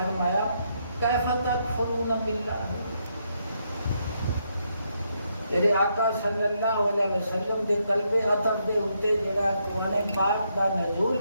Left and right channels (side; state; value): both; inverted; correlation -0.77